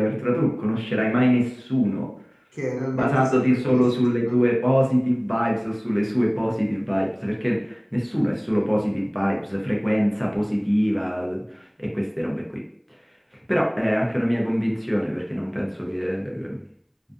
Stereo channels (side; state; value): both; identical; correlation 1.00